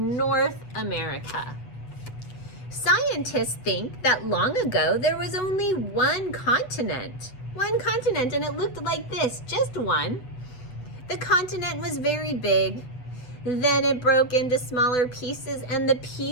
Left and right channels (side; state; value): right; late; 8.0 ms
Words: America. Scientists think that long ago there was only one continent, and it looked like this, just one. The continent was very big. Then it broke into smaller pieces, and the